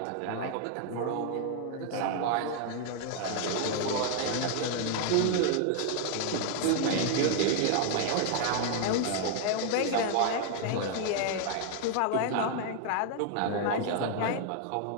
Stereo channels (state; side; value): different; both; correlation 0.00